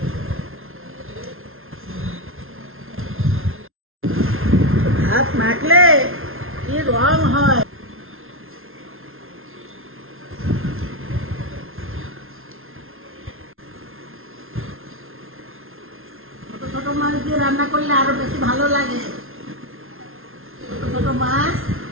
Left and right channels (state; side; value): late; left; 0.61 ms